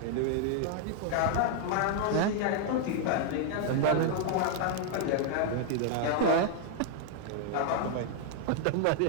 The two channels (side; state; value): both; different; correlation 0.00